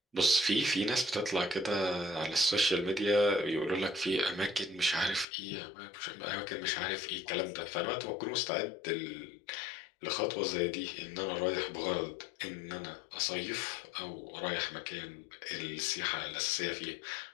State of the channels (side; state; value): right; drops out; at 5.2 s